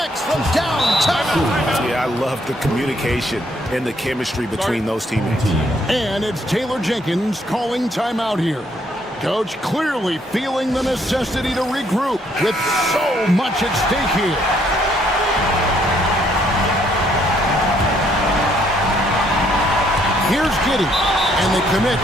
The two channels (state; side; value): normal; both; correlation 0.69